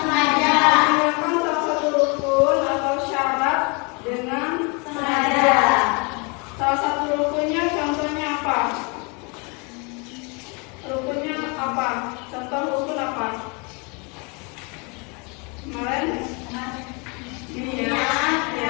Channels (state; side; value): quieter; right; 31.7 dB